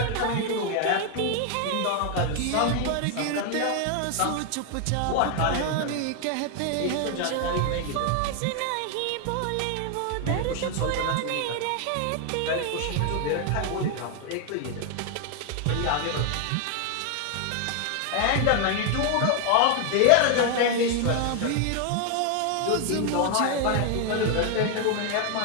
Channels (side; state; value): both; different; correlation 0.00